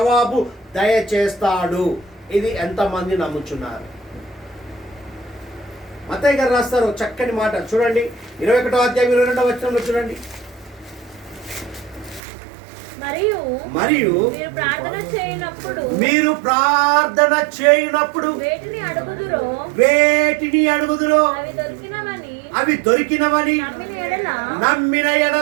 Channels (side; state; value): left; drops out; at 12.2 s